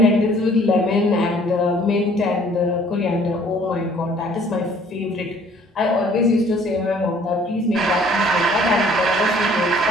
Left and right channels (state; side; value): normal; both; correlation 0.56